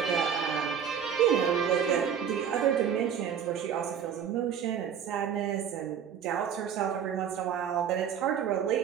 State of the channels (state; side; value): quieter; left; 8.1 dB